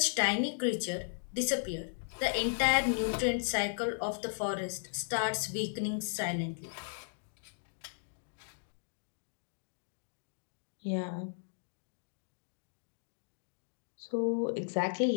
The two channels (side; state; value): right; silent; digital silence